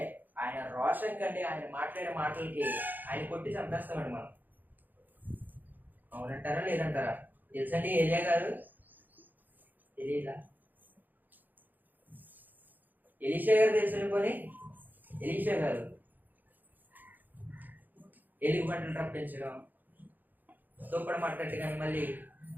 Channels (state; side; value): late; left; 0.086 ms